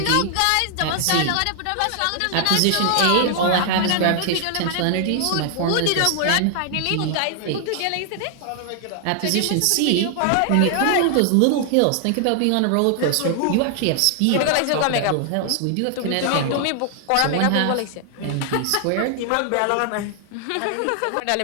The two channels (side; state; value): both; different; correlation 0.00